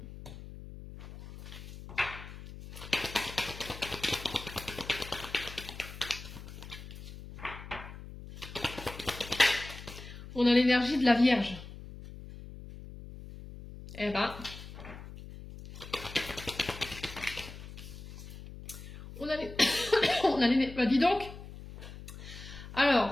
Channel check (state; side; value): noise; left; hum, 13 dB below the sound